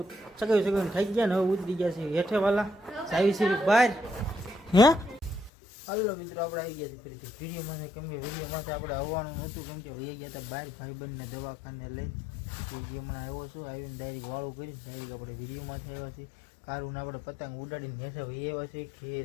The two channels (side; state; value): right; drops out; at 5.5 s